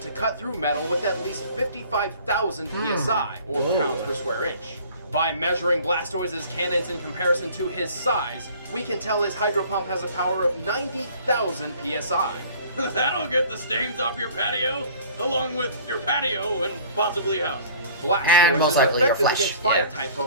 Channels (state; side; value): inverted; both; correlation -0.49